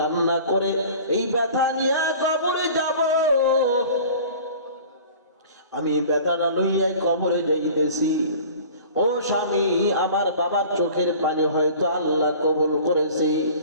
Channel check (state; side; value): inverted; both; correlation -0.44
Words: করে এই ব্যথা নিয়ে কবরে যাব, আমি ব্যথাটা লইয়া কবরে যাইতেছি। ও স্বামী, আমার বাবার চোখের পানি হয়তো আল্লাহ কবুল করেছে।